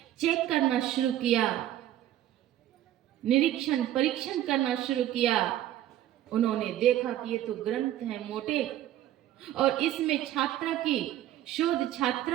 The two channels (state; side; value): quieter; left; 12.8 dB